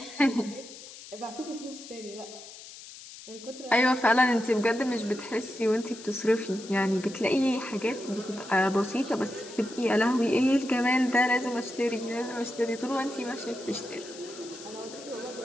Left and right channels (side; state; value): left; noise; hiss, 16 dB below the sound